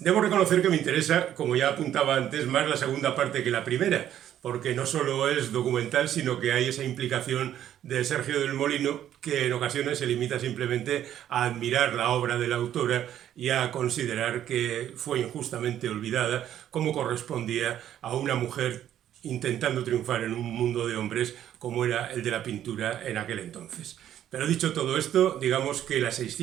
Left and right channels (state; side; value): quieter; left; 11.0 dB